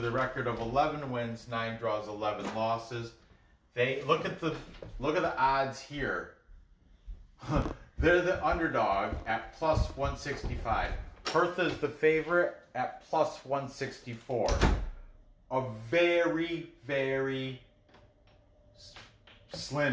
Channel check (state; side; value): identical; both; correlation 1.00